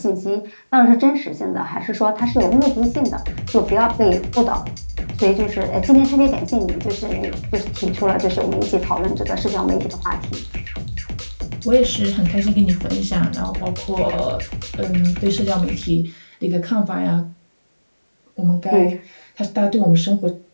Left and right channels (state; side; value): inverted; both; correlation -1.00